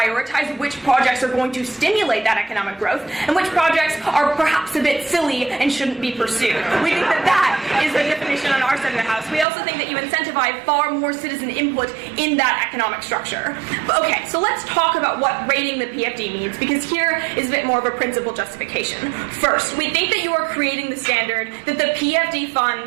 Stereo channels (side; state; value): left; drops out; at 9.5 s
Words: which projects are going to stimulate that economic growth and which projects are perhaps a bit silly and shouldn't be pursued. We think that that is the definition on our side of the house. We also think that you incentivize far more citizen input in that economic structure. But okay, so let's talk about what rating the PFD means, because here is a bit more of a principled justification. First, we think that you are creating the standard that the PFD